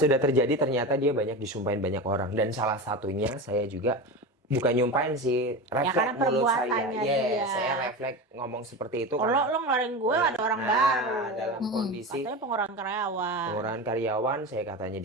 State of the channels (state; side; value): normal; both; correlation 0.25